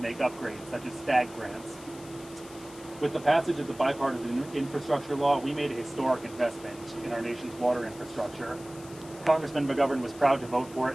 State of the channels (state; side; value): noise; left; hiss, 20 dB below the sound